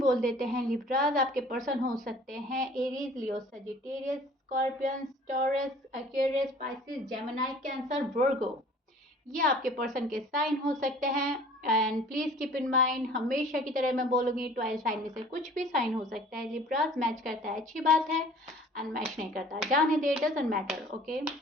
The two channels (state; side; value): normal; both; correlation 0.50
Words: देते हैं लिब्राज। आपके पर्सन हो सकते हैं Aries, Leo, Sagittarius, Scorpion, Taurus, Aquarius, Pisces, Gemini, Cancer, Virgo. ये आपके पर्सन के साइन हो सकते हैं। And please keep in mind, हमेशा की तरह मैं बोलूँगी 12 साइन में से कुछ भी साइन हो सकता है। लिब्राज मैच करता है अच्छी बात है, एंड मैच नहीं करता जाने दे, डजंट मैटर। ओके,